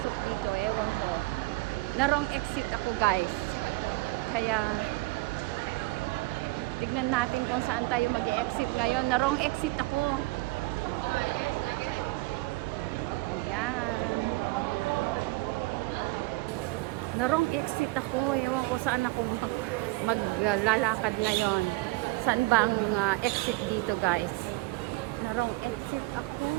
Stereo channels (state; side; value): quieter; left; 21.4 dB